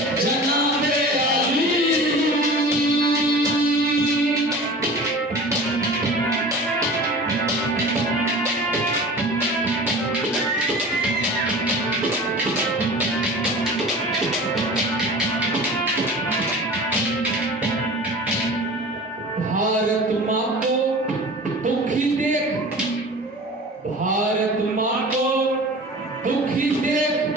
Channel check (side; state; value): both; normal; correlation 0.38